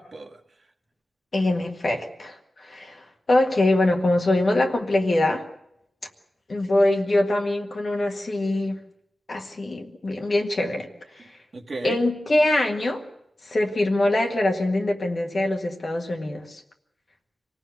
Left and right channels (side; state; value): both; normal; correlation 0.94